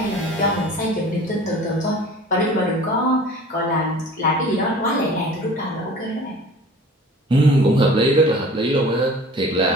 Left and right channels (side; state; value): both; normal; correlation 0.44